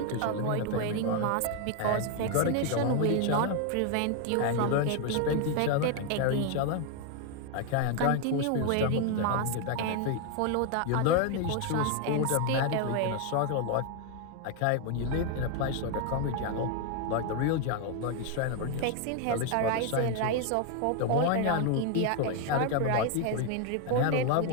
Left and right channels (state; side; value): different; both; correlation 0.01